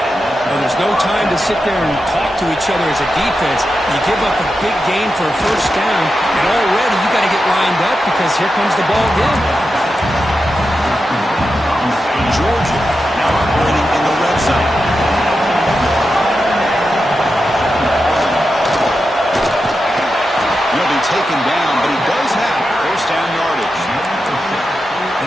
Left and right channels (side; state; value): both; normal; correlation 0.89